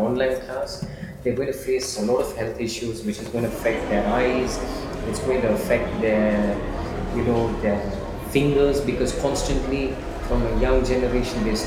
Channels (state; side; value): identical; both; correlation 1.00